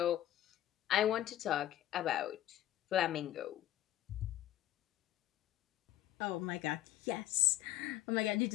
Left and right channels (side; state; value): right; quieter; 13.1 dB